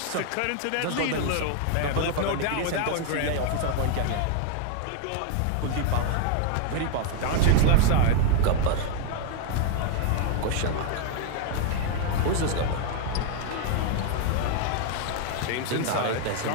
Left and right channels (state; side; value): different; both; correlation 0.00